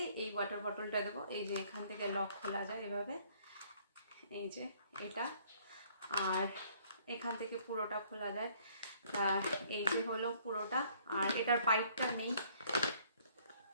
এই ওয়াটার বটলটা দেবো। এই যে এখান থেকে লক খোলা যায় এভাবে, এই যে এটা, আর এখান থেকে পুরোটা খোলা যায়। এই যে হলো পুরোটা, আর এটার পাইপটা নেই,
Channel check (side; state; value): both; inverted; correlation -0.61